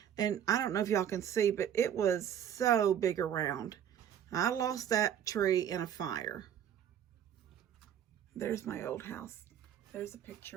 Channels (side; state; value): left; quieter; 9.5 dB